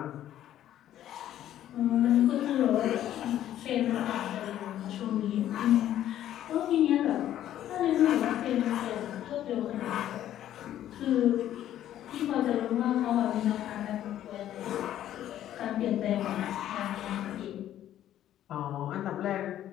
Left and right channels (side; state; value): right; quieter; 11.9 dB